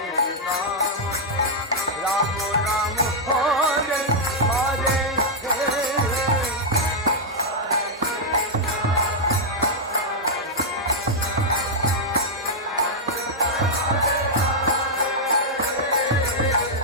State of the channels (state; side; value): normal; both; correlation -0.04